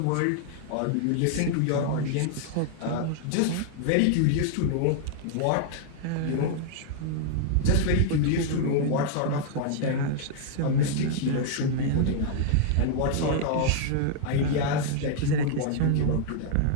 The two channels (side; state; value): both; different; correlation -0.01